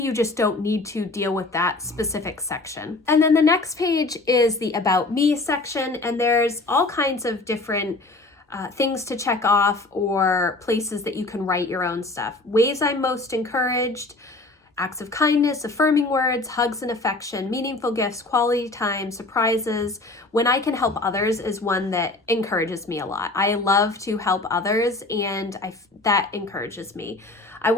just don't need to deal with that specific section. And then the next page is the About Me section, and there's all kinds of different things to check off, or places that you can write your own stuff. Ways I'm most encouraged: acts of kindness, affirming words, hugs and affection, meaningful gifts, quality time, surprises. When I can help others is one that encourages me a lot. I love to help others, and that encourages me. I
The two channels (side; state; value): right; quieter; 3.1 dB